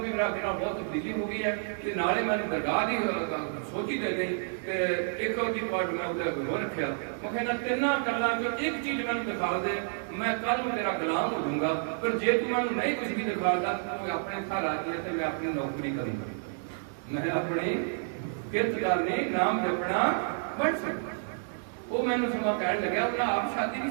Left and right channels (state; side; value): silent; left; digital silence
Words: ਵੀ ਮੇਰਾ ਬਹੁਤ ਤਬਦੀਲੀ ਹੋ ਗਈ ਹੈ। ਤੇ ਨਾਲੇ ਮੈਨੂੰ ਦਰਗਾਹ ਦੀ ਸੋਚੀ ਦੇ ਗਈ ਤੇ ਇੱਕ ਉਹਦੀ ਪਾਰਟ ਮੈਂ ਉਹਦੇ ਅੱਗੇ ਹੋ ਰੱਖਿਆ। ਮੈਂ ਕਹਿੰਦਾ ਤਿੰਨਾਂ ਗੱਲਾਂ ਚੋਂ ਇੱਕ ਚੀਜ਼ ਮੈਨੂੰ ਦਿਖਾ ਦੇ, ਮੈਂ ਕੱਲ ਨੂੰ ਤੇਰਾ ਗੁਲਾਮ ਹੋ ਜਾਊਂਗਾ। ਪਰ ਜੇ ਤੂੰ ਮੈਨੂੰ ਨਹੀਂ ਕੁਝ ਵੀ ਦਿਖਾਦਾ, ਤੂੰ ਆਪਣੇ ਘਰ ਆ ਗਿਆ ਤੇ ਮੈਂ ਆਪਣੀ ਨੌਕਰੀ ਕਰੂੰਗਾ, ਮੈਂ ਆਪਣੀ ਕਿਰਤ ਕਰਨੀ, ਨਾਮ ਜਪਣਾ ਬਣ ਸਕਦਾ। ਉਹ ਮੈਨੂੰ ਸਮਾਂ ਕਹਿਣ ਲੱਗਿਆ, ਉਹਨਾਂ ਆਪ ਸ਼ਾਦੀ ਨਹੀਂ